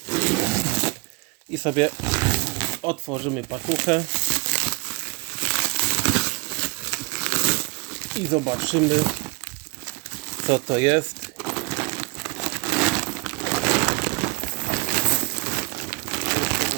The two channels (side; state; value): left; quieter; 29.4 dB